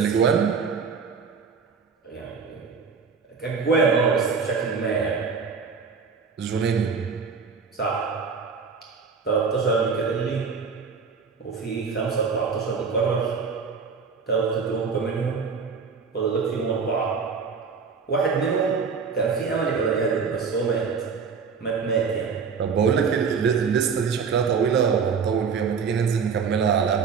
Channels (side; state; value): left; quieter; 5.6 dB